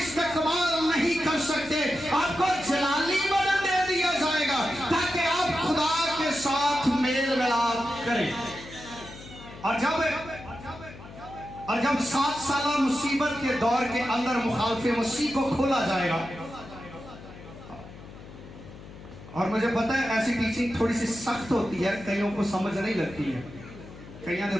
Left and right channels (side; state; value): left; noise; hum, 16 dB below the sound